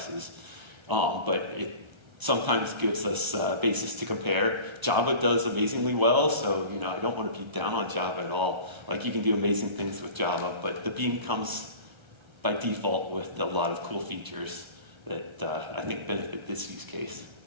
but it sometimes gives us a basis to compare. Java does amazingly well, so I don't want to be down on Java at all. Like, you can do amazing things with Java, but the Beam comes by default with a lot of cool features that I think benefit this use case,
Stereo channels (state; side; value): late; left; 1.3 ms